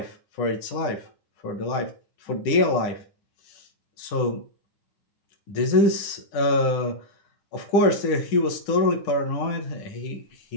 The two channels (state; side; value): late; right; 10 ms